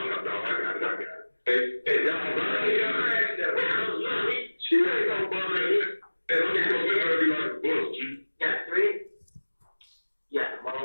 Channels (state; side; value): inverted; both; correlation -1.00